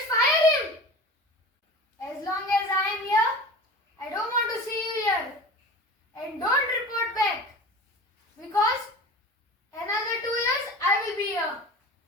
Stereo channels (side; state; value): both; normal; correlation 0.35